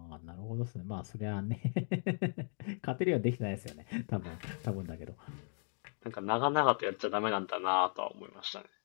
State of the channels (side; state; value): right; silent; 53 dB below the other